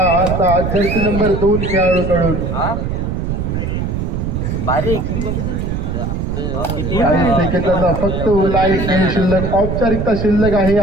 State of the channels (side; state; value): right; noise; rumble, 2 dB below the sound